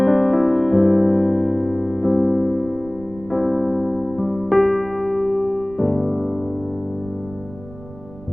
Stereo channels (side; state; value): right; noise; rumble, 19 dB below the sound